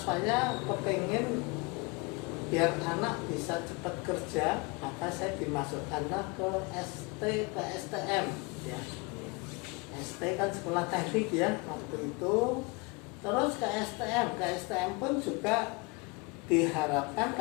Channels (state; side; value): quieter; right; 27.6 dB